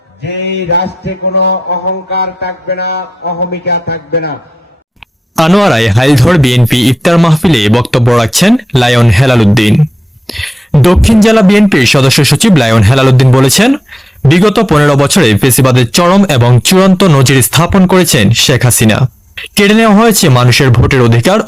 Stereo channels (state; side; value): normal; both; correlation 0.93